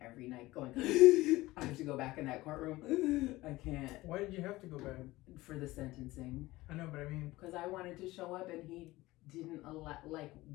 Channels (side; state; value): right; quieter; 18.8 dB